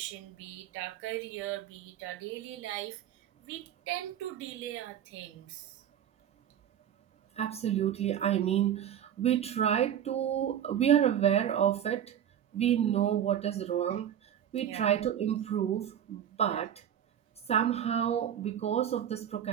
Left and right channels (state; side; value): quieter; left; 9.9 dB